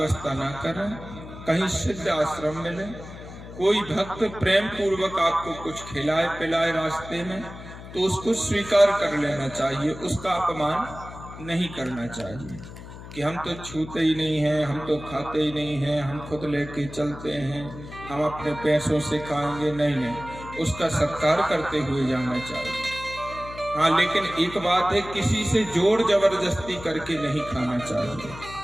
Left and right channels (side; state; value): left; noise; hum, 14 dB below the sound